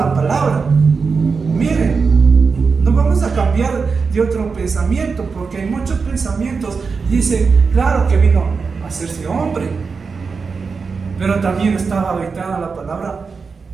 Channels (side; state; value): left; quieter; 5.0 dB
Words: palabra. Miren, no vamos a cambiar de otro pensamiento, porque hay muchos pensamientos. Dice, claro que vino a hacerse hombre, pero también estaba habitada la palabra